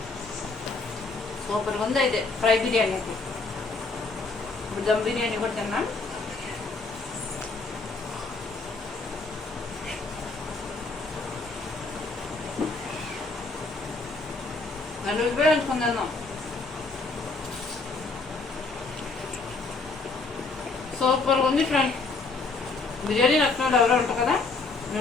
సూపర్గా ఉంది. అయితే ఫ్రై బిర్యానీ అయితే ఇప్పుడు దమ్ బిర్యానీ కూడా తిన్నాం. నన్ను ఉపయోగించుకుందాం. సూపర్గా ఉంది ఫ్రెండ్. బిర్యానీ నచ్చిన వాళ్ళు ఎవరో ఉంటారు కదా,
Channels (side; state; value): right; quieter; 3.8 dB